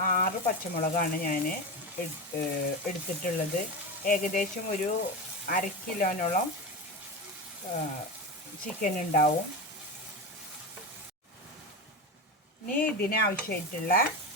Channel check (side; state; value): both; normal; correlation 0.21